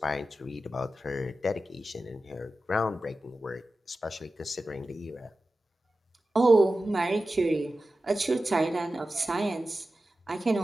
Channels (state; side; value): normal; both; correlation 0.94